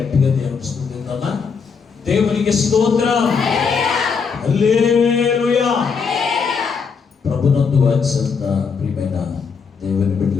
దేవుని స్తుతిద్దామా? దేవునికి స్తోత్రం. హల్లెలూయా. ప్రభునందు వాత్సల్య ప్రియమైన దేవుని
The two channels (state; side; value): quieter; right; 5.7 dB